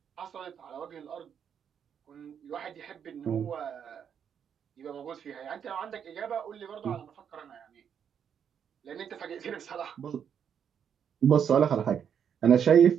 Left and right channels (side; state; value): left; quieter; 8.0 dB